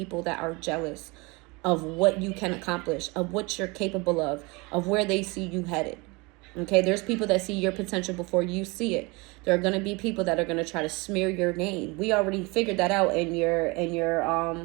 that are jealous of what you can accomplish, of what you're capable of where they see you headed. Okay, there's people that see your potential before you see it. There are going to be people that are going to try to smear your name. We already figured that out in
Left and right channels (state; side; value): quieter; left; 26.2 dB